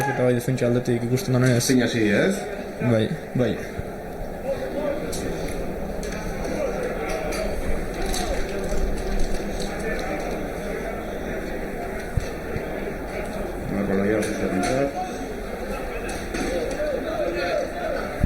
eta bai defentsa aldetik ikusten da ez. Zein hasi ez? Bai, bai.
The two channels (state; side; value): identical; both; correlation 1.00